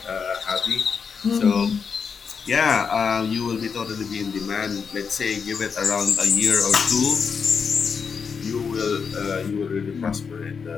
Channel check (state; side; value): quieter; right; 6.0 dB